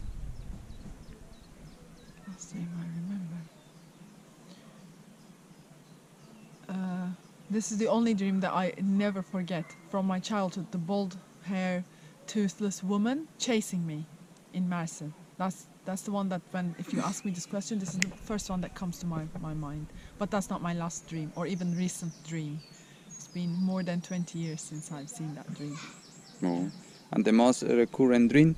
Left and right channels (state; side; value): identical; both; correlation 1.00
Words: Last dream I remember. This is the only dream that I never forget from my childhood. The bald hair, toothless woman chasing me in Mersin. That's the one that if you ask me this question, this is the first one that comes to my mind. But that's not my last dream or even recent dream. It's been more than 20 years since I've seen that dream. No. And the most recurrent dream